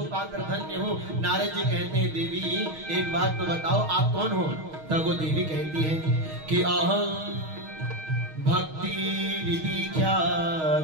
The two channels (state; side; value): late; left; 6.4 ms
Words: पाकर धन्य हूँ। नारद जी कहते हैं देवी एक बात तो बताओ आप कौन हो? तब वो देवी कहती है कि अहम भक्ति विधि